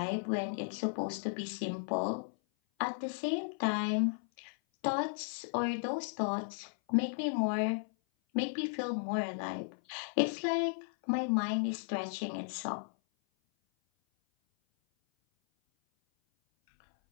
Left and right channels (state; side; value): silent; right; 54 dB below the other